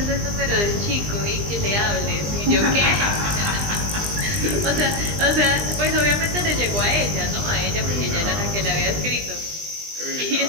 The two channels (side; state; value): left; late; 20 ms